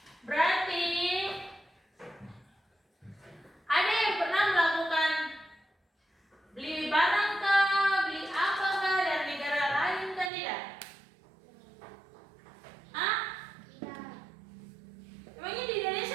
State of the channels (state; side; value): drops out; left; at 10.3 s